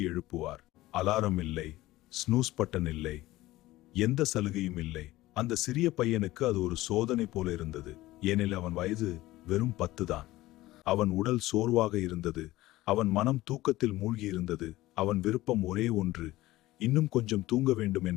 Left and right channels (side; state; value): right; quieter; 17.4 dB